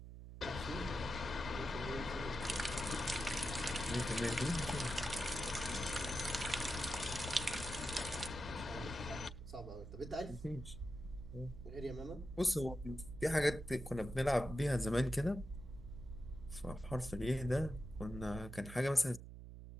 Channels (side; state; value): right; noise; hum, 12 dB below the sound